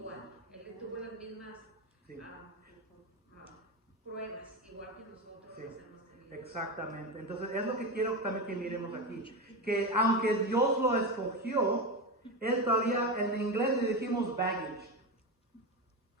él tuvo las mismas Sí. Pruebas, igual que nosotros Sí. las hemos tenido. Exactamente. Entonces es lo que quiero también que miremos aquí. Que aunque Dios lo escogió, Él todavía, en inglés le decimos baggage.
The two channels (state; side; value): normal; both; correlation 0.18